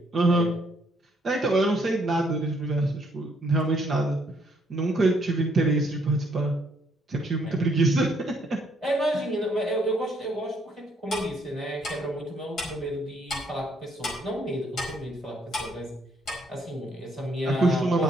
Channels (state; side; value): normal; both; correlation 0.69